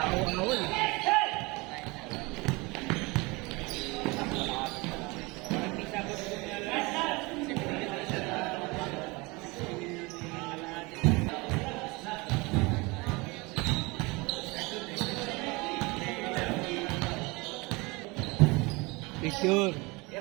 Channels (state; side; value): quieter; left; 25.1 dB